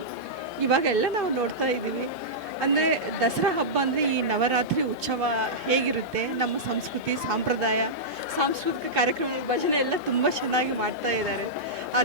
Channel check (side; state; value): right; noise; hum, 27 dB below the sound